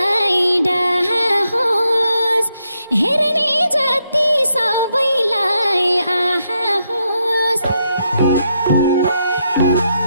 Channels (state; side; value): inverted; both; correlation -0.80